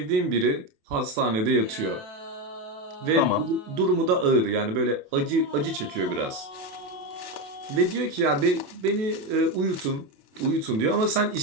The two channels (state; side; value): late; left; 28 ms